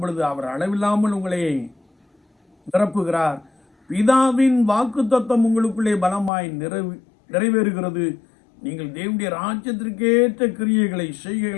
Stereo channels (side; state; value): right; drops out; at 6.3 s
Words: அவர் அளவில்லாமல் உங்களை நிரப்புகிறார். பிதாவின் வாக்குத்தத்தம் உங்களுக்குள்ளே பலமாய் நிறைவேறுகிறது. நீங்கள் தேவனுடைய ராஜ்யத்திற்கேற்ற கிரியைகளை